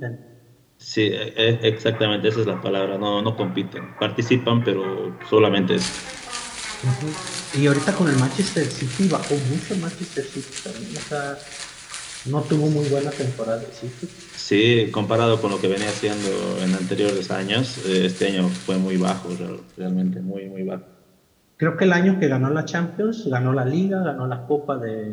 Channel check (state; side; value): identical; both; correlation 1.00